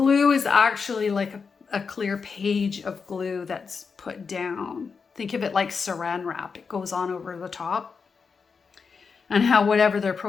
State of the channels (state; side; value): quieter; right; 5.4 dB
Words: is actually like a clear page of glue that's put down. Think of it like saran wrap. It goes on over the top. And how whatever their